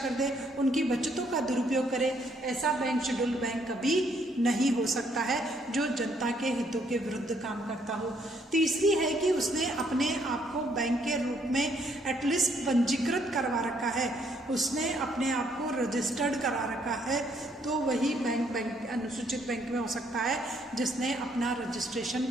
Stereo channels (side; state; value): both; normal; correlation 0.69